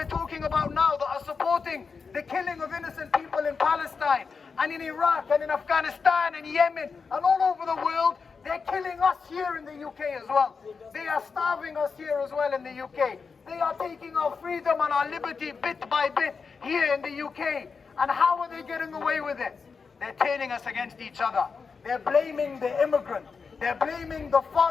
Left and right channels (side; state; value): right; quieter; 5.2 dB